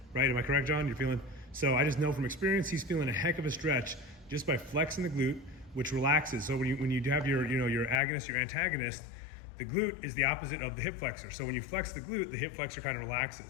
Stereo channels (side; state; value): right; drops out; at 8.0 s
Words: right? Am I correct, John? You're feeling, so I just know from experience, he's feeling a heck of a stretch just by flexing the glute, which relaxes. So when you have your agonist, your antagonist, the glute is the opposite of the hip flexor. So when you flex the glute, the hip flexor kind of